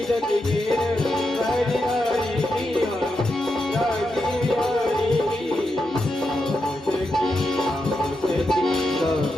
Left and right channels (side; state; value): both; normal; correlation 0.86